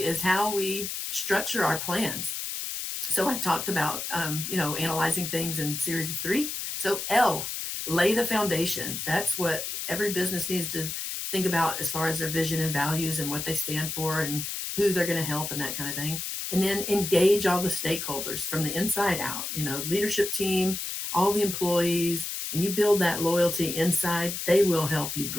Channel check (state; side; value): noise; left; hiss, 4 dB below the sound